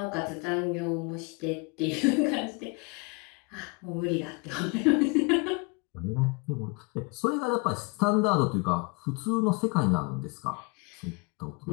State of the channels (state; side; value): quieter; right; 29.7 dB